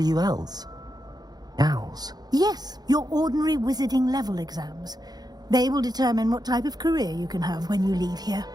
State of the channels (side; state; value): left; late; 0.19 ms